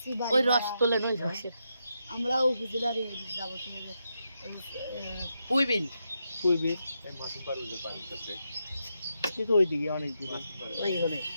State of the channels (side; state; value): both; inverted; correlation -0.83